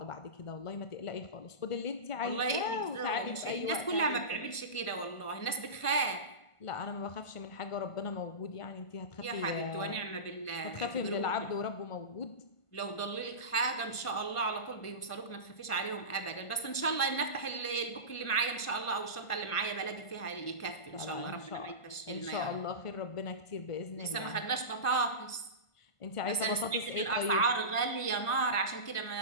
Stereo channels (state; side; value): late; right; 1.5 ms